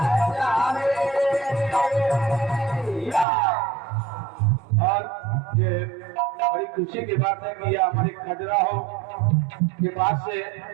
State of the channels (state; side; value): drops out; left; at 3.2 s